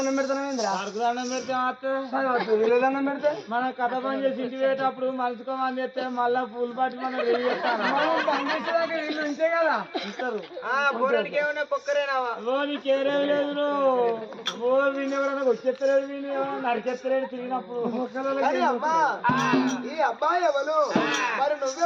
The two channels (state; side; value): identical; both; correlation 1.00